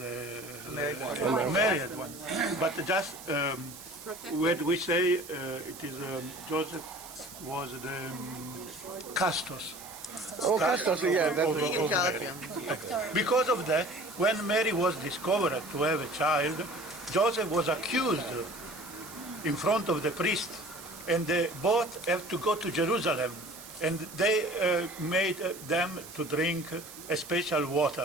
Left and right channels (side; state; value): right; noise; hiss, 15 dB below the sound